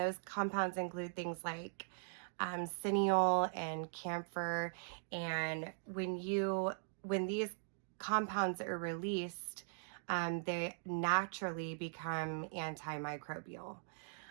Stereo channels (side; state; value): left; silent; digital silence